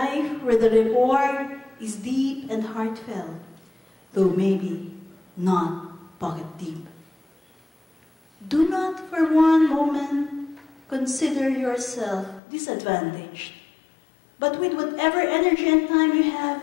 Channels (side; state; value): right; drops out; at 12.4 s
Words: where the reward is deep and heartfelt, though maybe not pocket deep. Do not for one moment consider yourself disadvantaged, but with whatever energy and time you have,